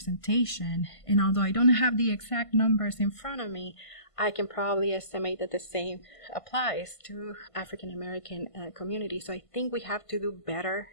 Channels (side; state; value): right; late; 1.5 ms